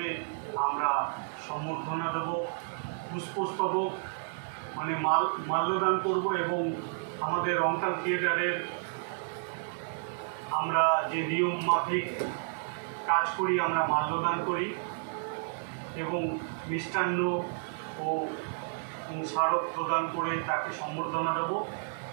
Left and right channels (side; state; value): left; silent; digital silence